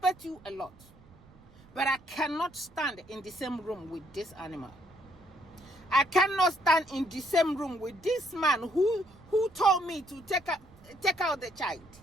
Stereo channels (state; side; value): noise; right; rumble, 25 dB below the sound